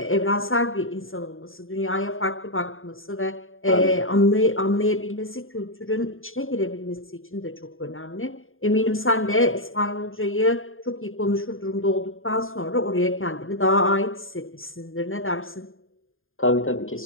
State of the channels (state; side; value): late; right; 0.59 ms